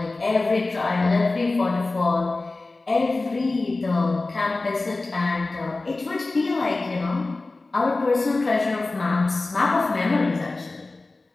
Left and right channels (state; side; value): quieter; right; 3.3 dB